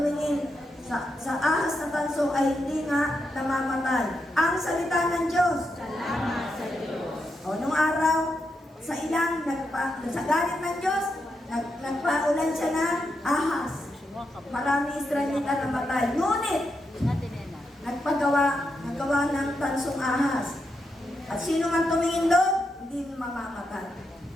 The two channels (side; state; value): both; normal; correlation 0.84